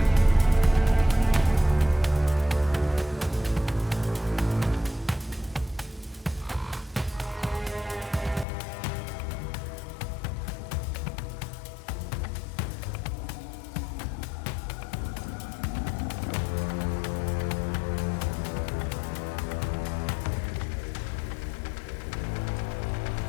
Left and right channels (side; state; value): right; drops out; at 8.5 s